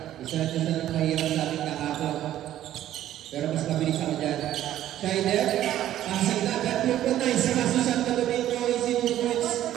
Isa na mahirap sa ating kahapon. Pero mas mabilis ako dyan. Schneider, passing na. Bertuccio, nice. Pass to Santo Domingo. Easy movements.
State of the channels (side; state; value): left; quieter; 12.5 dB